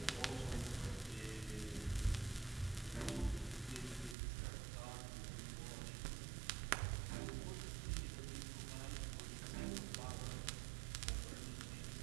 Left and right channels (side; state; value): left; drops out; at 4.2 s